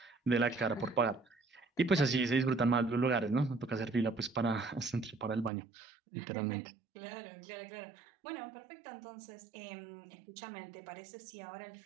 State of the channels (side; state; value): left; drops out; at 5.5 s